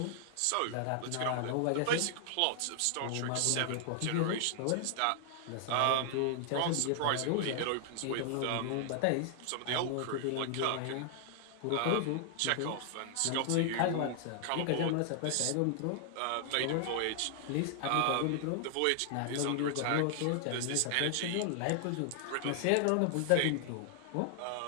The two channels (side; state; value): both; different; correlation 0.00